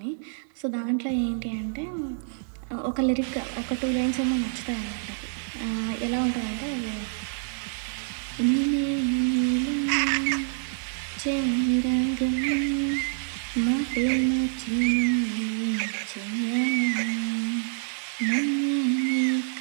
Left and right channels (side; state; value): left; silent; 60 dB below the other